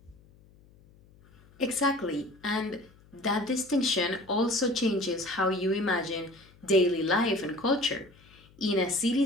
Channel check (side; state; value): left; noise; hum, 27 dB below the sound